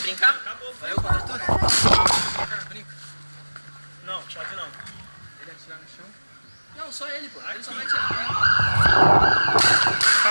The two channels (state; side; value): inverted; both; correlation -1.00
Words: brincar? Acabou, vai eu contra tu? Brinca. Não, chave não. Ele atirar no chão? Não, só ele, pô. Ele só vai atirar.